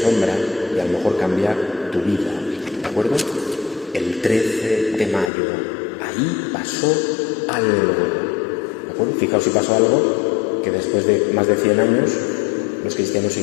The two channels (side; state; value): right; drops out; at 5.3 s